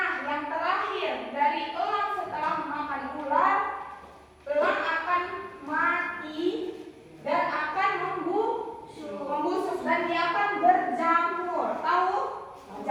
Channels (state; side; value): identical; both; correlation 1.00